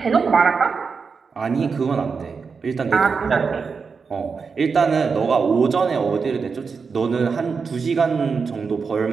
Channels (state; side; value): quieter; left; 5.3 dB